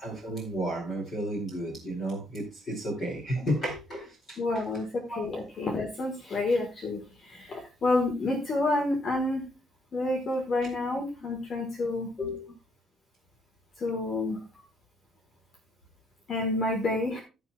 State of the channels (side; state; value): both; normal; correlation 0.69